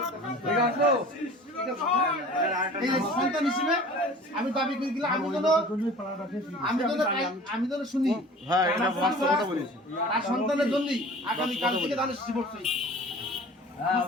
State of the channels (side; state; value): both; normal; correlation 0.44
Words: ঠিক আছে এই সন্তান হিসেবে আমি দাবি করে দিলাম আমি যেন শুনি হ্যাঁ এটা বাস্তব কথা বলেছি আর সন্তানের জন্য আগামী কাল থেকে তাহলে জীবন